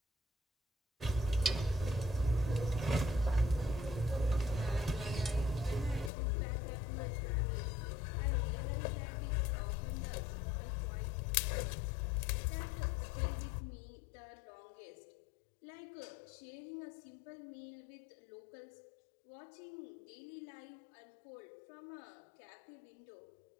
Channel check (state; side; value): drops out; right; at 6.1 s